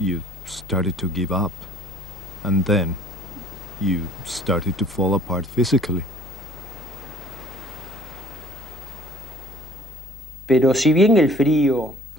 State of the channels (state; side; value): normal; both; correlation 0.52